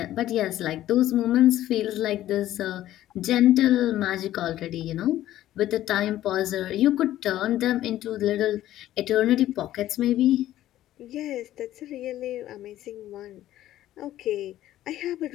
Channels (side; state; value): right; quieter; 13.5 dB